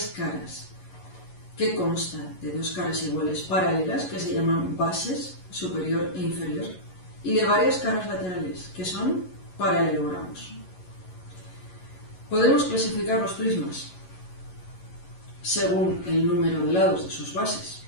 caras, que consta de dos caras iguales paralelas, que se llaman bases, superior e inferior, y de varias caras laterales, que son paralelogramos. Podemos clasificar los prismas según el número de lados de sus bases,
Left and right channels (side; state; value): right; late; 11 ms